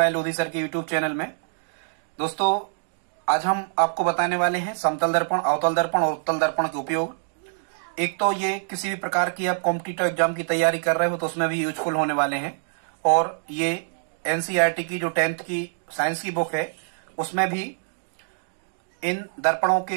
Lodhi sir के यूट्यूब चैनल में। दोस्तों, आज हम आपको बताने वाले हैं समतल दर्पण, अवतल दर्पण और उत्तल दर्पण के उपयोग। एक तो ये किसी भी प्रकार की आप कॉम्पिटिटिव एग्जाम की तैयारी कर रहे हो तो उसमें भी यूजफुल होने वाले हैं, और ये एनसीईआरटी की जो 10th की साइंस की बुक है उसमें भी इन दर्पणों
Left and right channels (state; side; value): silent; left; digital silence